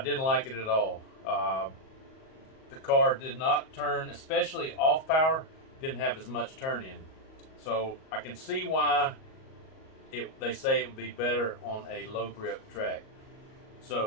didn't like it at all. The car did not turn, especially off power, didn't have as much turn in. So I can see why they say it would be better on a low grip track.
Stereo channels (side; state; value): right; late; 38 ms